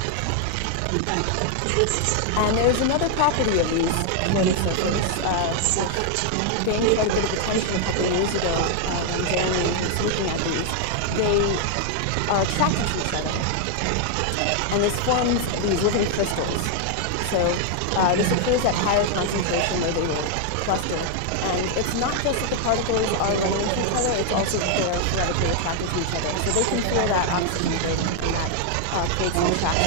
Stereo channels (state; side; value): different; both; correlation 0.00